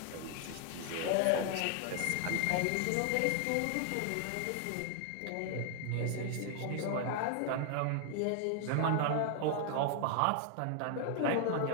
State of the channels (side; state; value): both; different; correlation 0.00